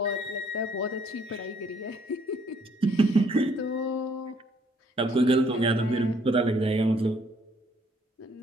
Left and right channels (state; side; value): normal; both; correlation 0.65